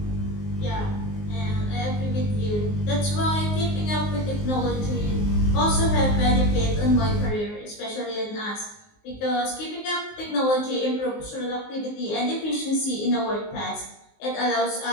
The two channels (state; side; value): late; right; 19 ms